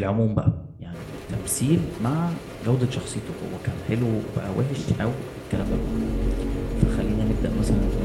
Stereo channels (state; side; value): identical; both; correlation 1.00